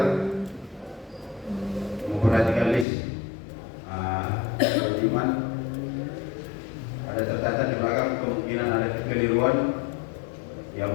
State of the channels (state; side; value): drops out; right; at 2.9 s